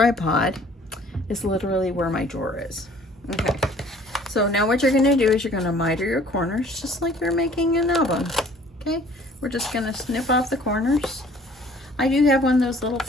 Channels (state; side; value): normal; both; correlation 0.54